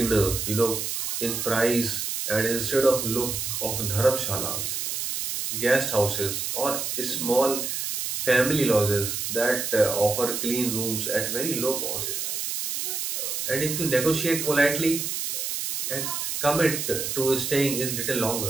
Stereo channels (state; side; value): noise; right; hiss, 3 dB below the sound